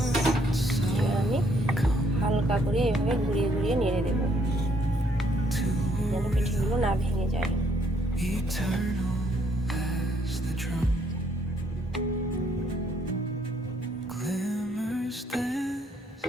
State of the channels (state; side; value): normal; both; correlation 0.69